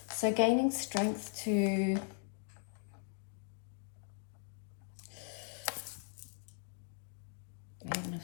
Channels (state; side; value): silent; right; 52 dB below the other